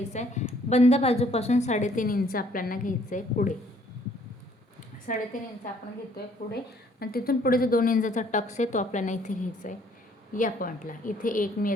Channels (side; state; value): both; normal; correlation 0.62